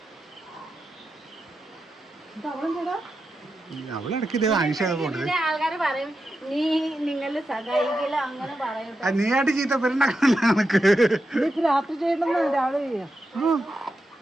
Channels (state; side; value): normal; both; correlation 0.88